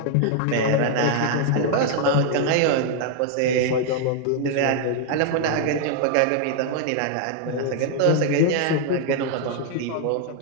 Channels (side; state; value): both; different; correlation 0.00